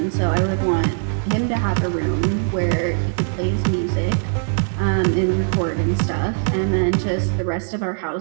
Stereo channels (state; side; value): silent; left; 59 dB below the other